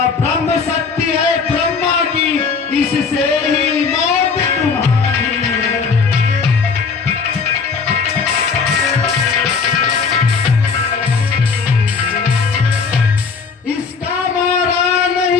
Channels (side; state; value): right; quieter; 5.2 dB